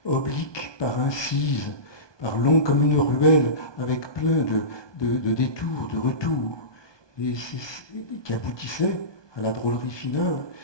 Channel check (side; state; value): right; late; 1.2 ms